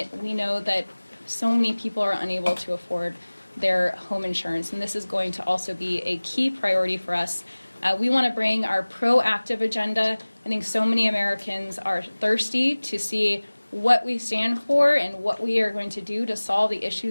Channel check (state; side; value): inverted; both; correlation -1.00